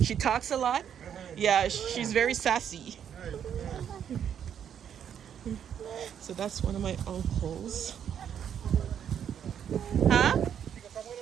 She talks a lot. Yeah, she's very sassy. So that's one of my uncles. Huh?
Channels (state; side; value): quieter; left; 8.8 dB